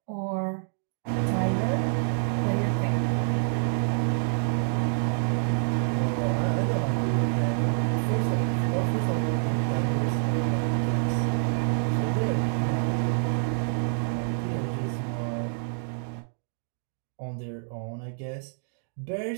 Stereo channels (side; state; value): left; silent; digital silence